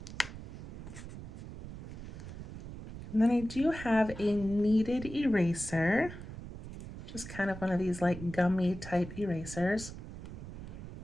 And then I do have a kneaded eraser, just kind of one of these like gummy type erasers.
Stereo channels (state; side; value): noise; right; rumble, 11 dB below the sound